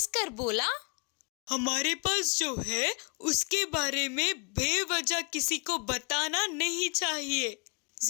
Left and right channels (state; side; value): quieter; right; 34.6 dB